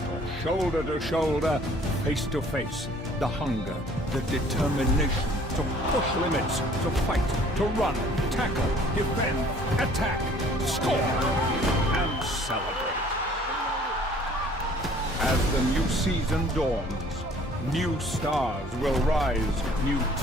shoulder to shoulder, face to face. The hunger, the determination to push limits, to fight, to run, tackle, defend, attack, score, and celebrate. As the new season dawns, new stars will rise, new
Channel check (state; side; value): normal; both; correlation 0.55